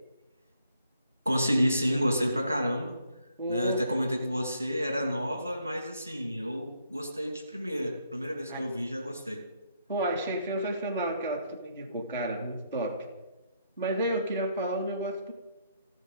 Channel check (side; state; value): both; inverted; correlation -0.72